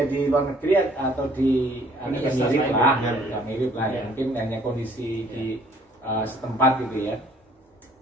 di luar negeri atau di ini yang mirip lah, mirip lah ya. Mungkin hanya kondisi di setempat gitu ya.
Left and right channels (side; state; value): both; normal; correlation 0.59